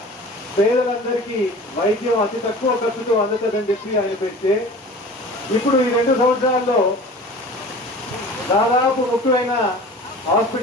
పేదలందరికీ వైద్యం అతి తక్కువ ఖర్చుతో అందుతుందని చెప్పి ఆయన పెడితే, ఇప్పుడు ఈ 2 సంవత్సరాల్లో దాదాపు ముఖ్యమైన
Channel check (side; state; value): both; normal; correlation 0.41